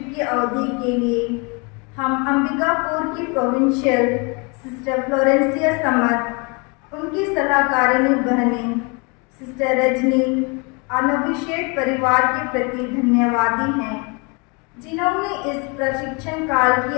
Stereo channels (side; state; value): right; quieter; 30.7 dB